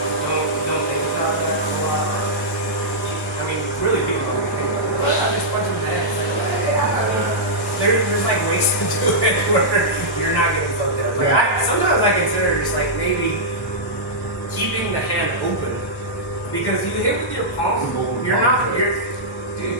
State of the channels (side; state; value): both; normal; correlation -0.11